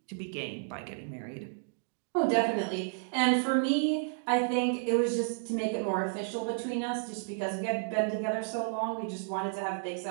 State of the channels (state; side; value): silent; left; digital silence